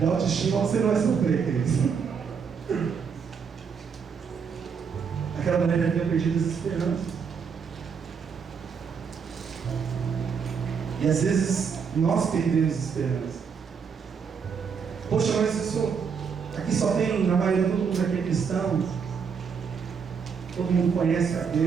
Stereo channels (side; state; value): left; quieter; 6.3 dB